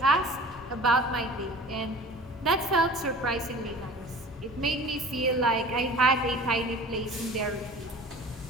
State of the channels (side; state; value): both; normal; correlation 0.42